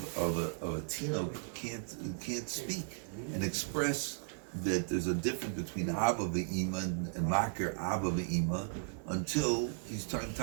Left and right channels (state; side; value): silent; left; digital silence